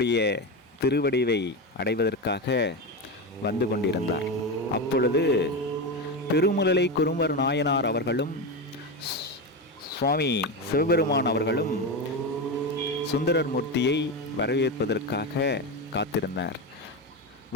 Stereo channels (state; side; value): normal; both; correlation 0.17